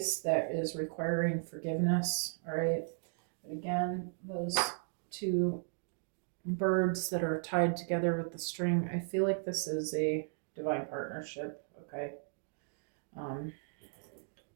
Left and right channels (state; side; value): silent; left; digital silence